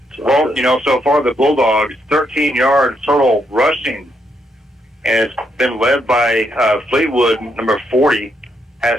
Well, so far the Bulldogs, 13 yards total rushing, and it's been led by Fleetwood, number 40,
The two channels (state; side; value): normal; both; correlation 0.77